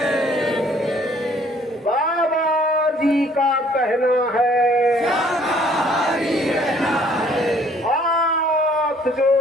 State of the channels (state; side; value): normal; both; correlation 0.59